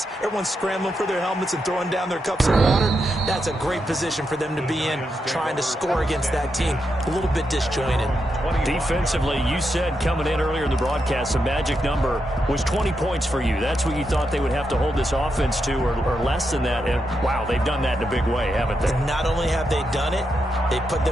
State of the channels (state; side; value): normal; both; correlation 0.84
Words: Everyone's scrambling for their helmets and throwing down their cups of water. That's a great position for them to be in, trying to score against that team. A little bit disjointed. Defensively, you said coming in earlier in the broadcast, the magic number was 20 points for you. That's what you thought they would have to hold this offense to, or less than that. And wow, they've done that in a big way, haven't they? And not only have they done it, they put